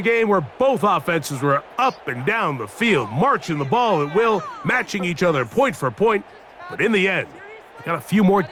game where both offenses were up and down the field, marching the ball at will, matching each other point for point. But in the end, they got a few more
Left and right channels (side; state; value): both; identical; correlation 1.00